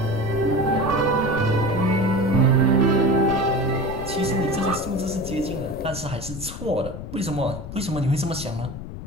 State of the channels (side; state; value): left; noise; rumble, 9 dB below the sound